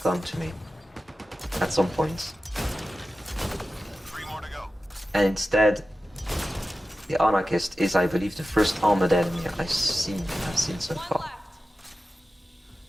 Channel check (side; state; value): both; normal; correlation 0.93